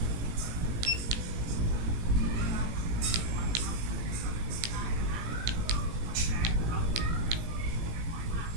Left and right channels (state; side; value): late; left; 17 ms